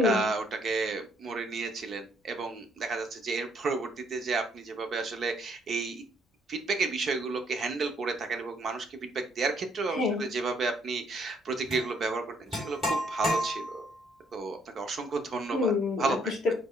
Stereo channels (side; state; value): both; normal; correlation 0.68